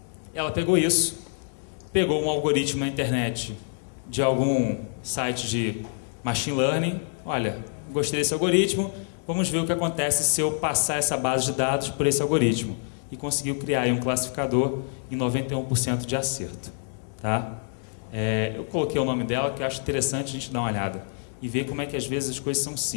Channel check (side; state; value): right; silent; 61 dB below the other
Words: Ela pegou isso, pegou um algoritmo na internet de algum site de machine learning. Olha, gostei desse algoritmo, vamos ver o que acontece se eu passar essa base de dados por esse algoritmo. E conseguiu criar aí um classificador em 91% de acerto. Tá? Eu coloquei o nome dela, que eu acho interessante a gente dar uma olhada e ver como é que às vezes as coisas são